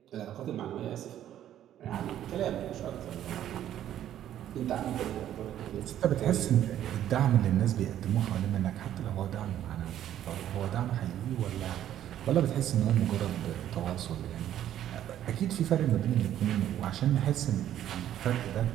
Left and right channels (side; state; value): left; quieter; 11.4 dB